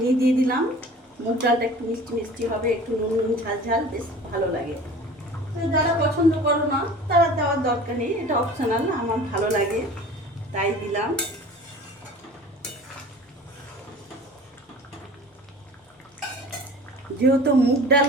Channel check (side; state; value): both; normal; correlation 0.42